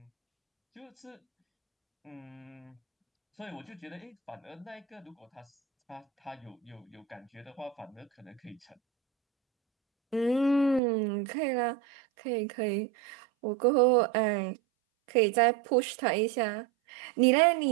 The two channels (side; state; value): left; drops out; at 10.8 s